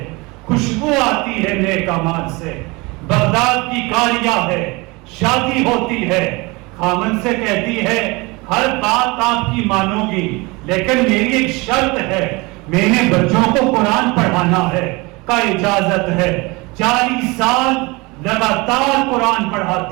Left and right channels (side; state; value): left; quieter; 25.0 dB